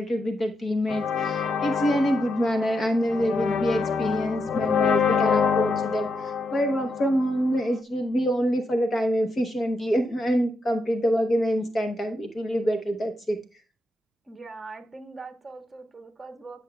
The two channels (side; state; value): both; normal; correlation 0.83